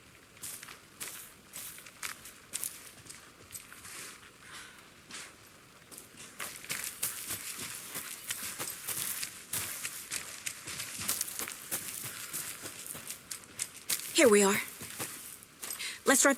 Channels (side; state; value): both; identical; correlation 1.00